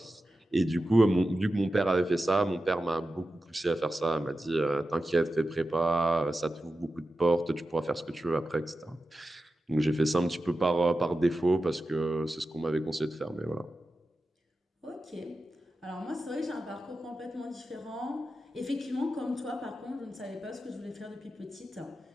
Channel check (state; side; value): normal; both; correlation 0.92